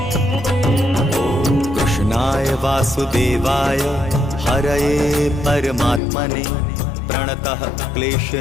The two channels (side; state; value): right; drops out; at 6.0 s